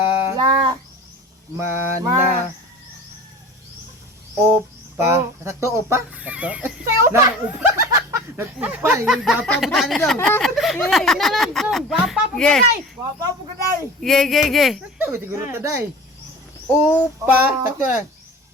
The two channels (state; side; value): normal; both; correlation 0.39